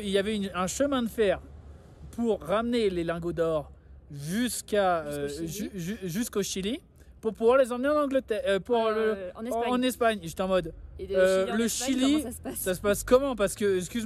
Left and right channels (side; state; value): both; identical; correlation 1.00